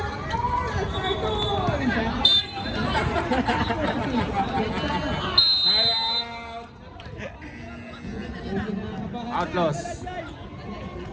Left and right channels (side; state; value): both; identical; correlation 1.00